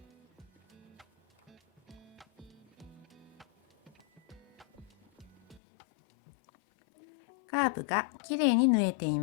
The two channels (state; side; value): drops out; right; at 5.6 s